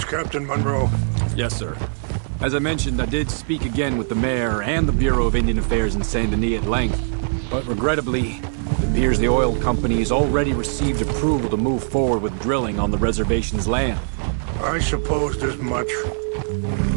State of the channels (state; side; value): silent; left; 58 dB below the other